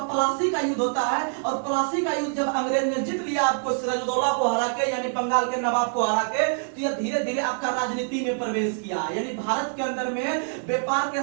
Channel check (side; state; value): left; silent; 62 dB below the other